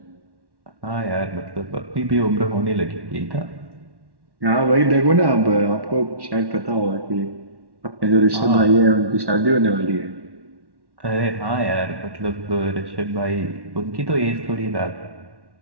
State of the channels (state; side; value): late; left; 1.1 ms